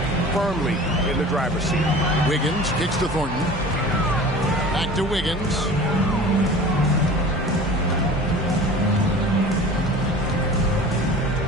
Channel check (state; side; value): normal; both; correlation 0.41